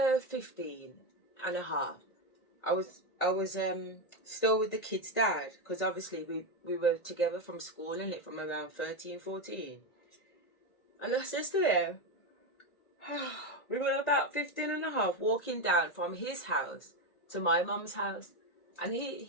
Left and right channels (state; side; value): late; right; 1.9 ms